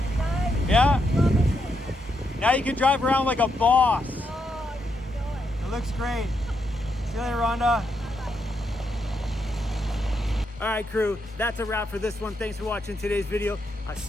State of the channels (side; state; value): both; normal; correlation 0.80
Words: Nice. Yeah? Loving it. Now you can drive around like a boss. Oh, you know it. It looks great. See you later, Rhonda. All right, crew, that's a wrap for this one. Thanks for watching today's video. I'll